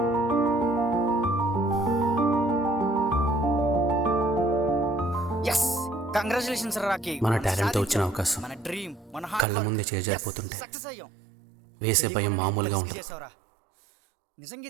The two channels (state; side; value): drops out; left; at 9.5 s